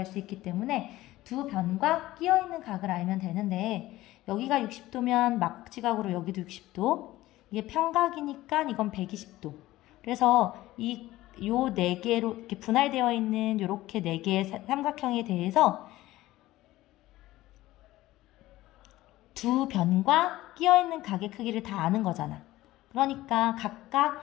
수 있기 때문에 두 변과 끼어있는 각을 알면 되는데 여기가 60도면 막지각으로 여기도 60도. 이게 평각이니까 이건 120도. 그래서 요 네 개로 이렇게 분할되어 있는 요렇게 네 개의 삼각형에 대해서 두 변과 끼어있는 각의 크기를 다 아는 거잖아. 그러니까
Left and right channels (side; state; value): right; quieter; 16.6 dB